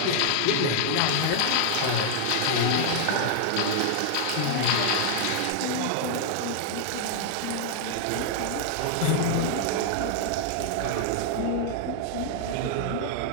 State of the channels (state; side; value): different; both; correlation 0.00